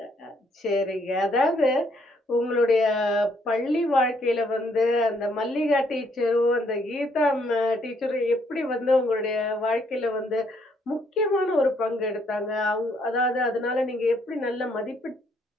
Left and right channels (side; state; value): both; normal; correlation 0.70